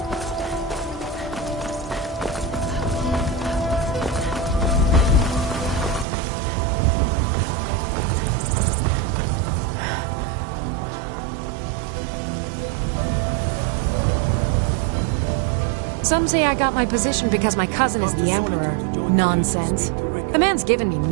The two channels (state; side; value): drops out; left; at 6.1 s